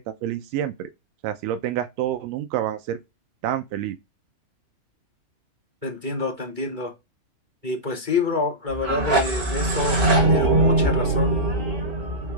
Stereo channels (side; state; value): left; late; 2.2 ms